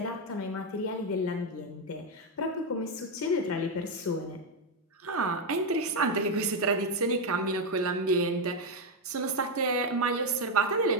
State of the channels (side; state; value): both; normal; correlation 0.05